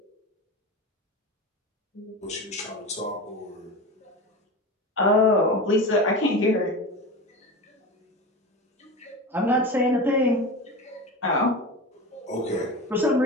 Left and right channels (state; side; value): normal; both; correlation 0.27